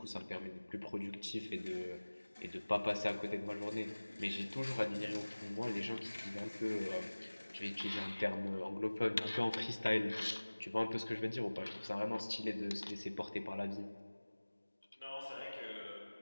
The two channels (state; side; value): inverted; both; correlation -1.00